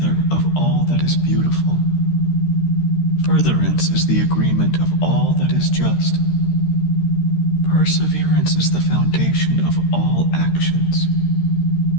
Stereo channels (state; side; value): late; right; 13 ms